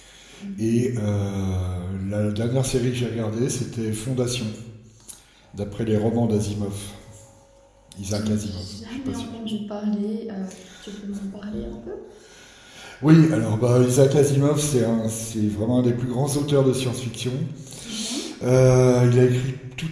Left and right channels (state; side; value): identical; both; correlation 1.00